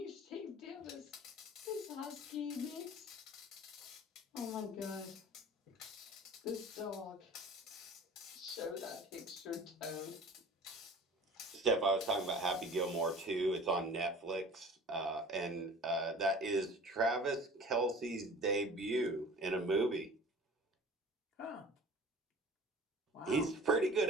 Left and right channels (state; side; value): normal; both; correlation 0.43